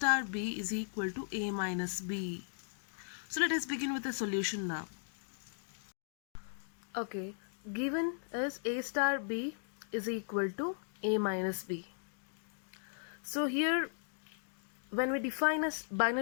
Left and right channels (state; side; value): silent; right; digital silence